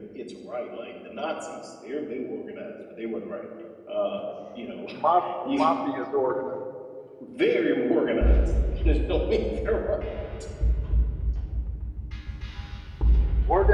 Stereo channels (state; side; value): identical; both; correlation 1.00